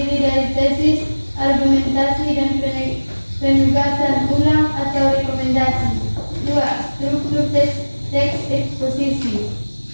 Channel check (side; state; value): both; inverted; correlation -1.00